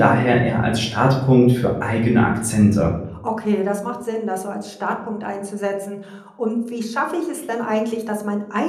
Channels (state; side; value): identical; both; correlation 1.00